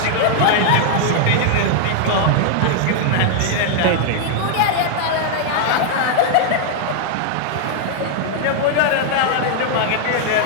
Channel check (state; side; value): different; both; correlation -0.01